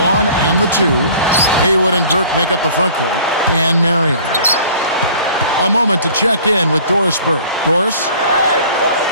and the 2. Haywood and Dirk make up the front court. And Marion. A moment to check in with Doris Burke. Doris?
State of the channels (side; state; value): both; inverted; correlation -0.49